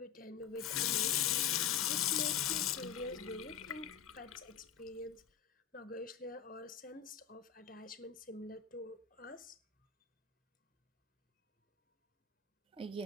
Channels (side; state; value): right; quieter; 8.5 dB